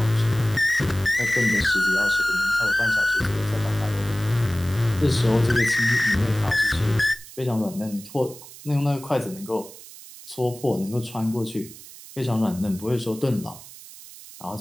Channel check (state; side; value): noise; right; hiss, 17 dB below the sound